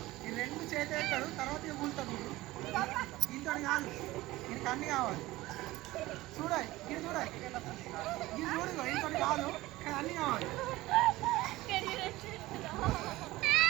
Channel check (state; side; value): quieter; left; 18.3 dB